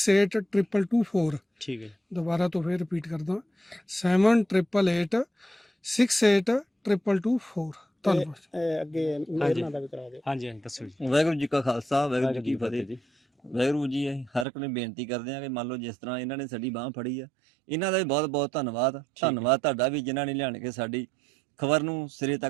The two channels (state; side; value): drops out; left; at 14.5 s